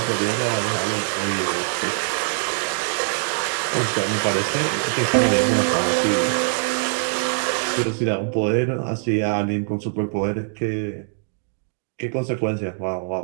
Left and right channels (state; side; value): silent; left; digital silence